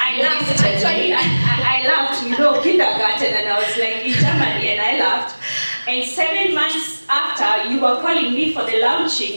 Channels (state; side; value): inverted; both; correlation -1.00